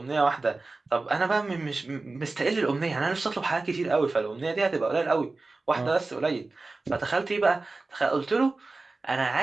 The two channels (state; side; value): quieter; left; 3.5 dB